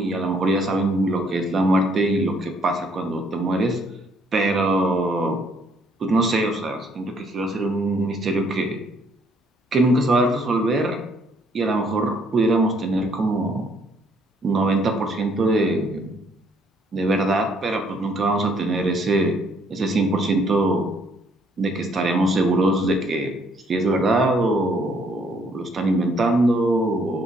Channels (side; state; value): both; normal; correlation 0.66